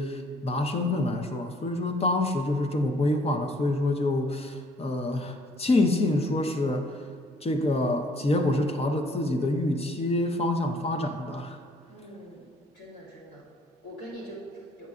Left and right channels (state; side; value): normal; both; correlation 0.61